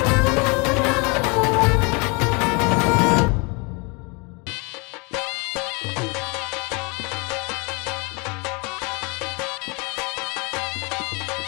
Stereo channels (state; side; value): quieter; right; 30.5 dB